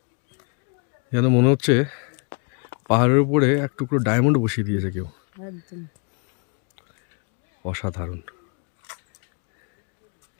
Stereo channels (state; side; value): quieter; right; 37.2 dB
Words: যেন মনে হচ্ছে পাহাড়ের উপরে এক টুকরো ডায়মন্ড বসিয়ে দিয়েছে কেউ। একদম অসাধারণ।